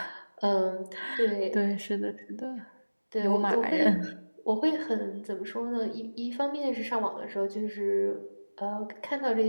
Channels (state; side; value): inverted; both; correlation -1.00